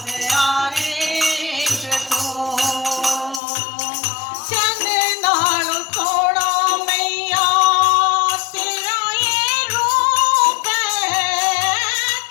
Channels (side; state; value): right; drops out; at 3.4 s